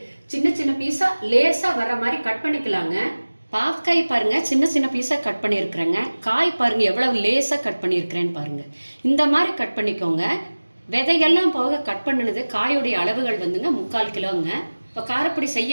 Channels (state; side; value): inverted; both; correlation -1.00